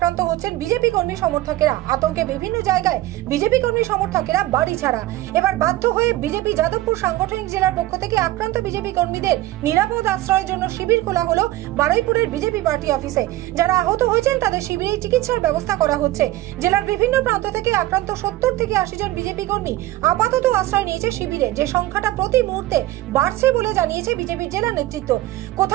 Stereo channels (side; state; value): left; quieter; 16.7 dB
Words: হচ্ছেন বিজেপি কর্মী সমর্থকেরা। আতঙ্কে বিভিন্ন জায়গায় বিজেপি কর্মী সমর্থকেরা বাড়ি ছাড়া। এবার বাধ্য হয়ে বিজেপি যাদবপুর সাংগঠনিক জেলার পক্ষ থেকে আক্রান্ত বিজেপি কর্মীদের নিরাপদ আশ্রয়ের জন্য শিবির খোলা হলো বারুইপুরের বিজেপি পার্টি অফিসে। যারা আহত হয়েছেন তাদের শিবিরে চিকিৎসার ব্যবস্থা করা হচ্ছে। জেলার বিভিন্ন প্রান্ত থেকে আক্রান্ত 70 থেকে 80 জন বিজেপি কর্মী আপাতত আশ্রয় নিয়েছে শিবিরে, যে সংখ্যাটা প্রতি মুহূর্তে বাড়ছে বলে জানিয়েছে বিজেপির জেলা নেতৃত্ব।